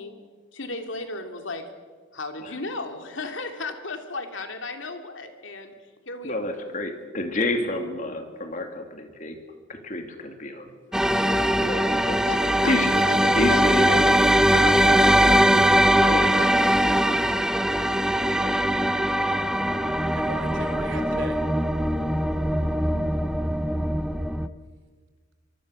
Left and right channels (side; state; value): both; normal; correlation 0.85